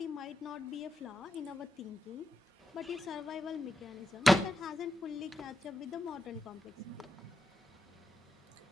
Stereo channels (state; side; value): normal; both; correlation 0.87